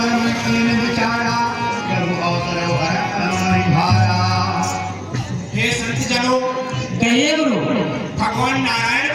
मन कीन विचारा प्रभु अवसर हर भारा। हे संत जनों, कहिए गुरु भगवान नारायण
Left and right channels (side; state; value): both; identical; correlation 1.00